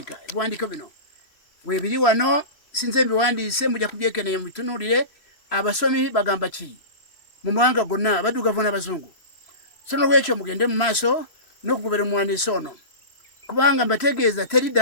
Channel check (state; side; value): late; right; 3.0 ms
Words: Ebiwandiiko bino weebiri wano, sinze mbiwandiise, mujja kubyekenneenya mubitunuulire. Abasomi bagamba ki mu mawanga gonna, abaddugavu n'abazungu. So n'olwekyo mugende mu maaso n'okugobera omuwandiisi ono, kubanga mbategeeza teri